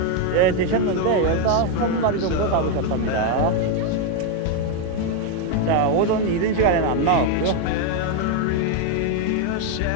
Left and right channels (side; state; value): both; different; correlation 0.01